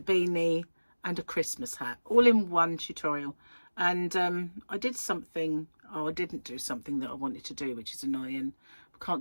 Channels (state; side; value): inverted; both; correlation -1.00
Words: and a Christmas hat, all in one tutorial. And I did something, I didn't do something that I wanted to do, which is annoying. I